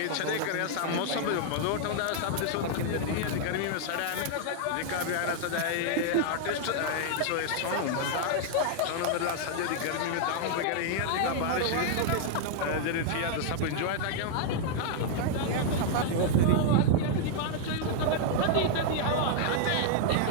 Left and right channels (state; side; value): different; both; correlation 0.00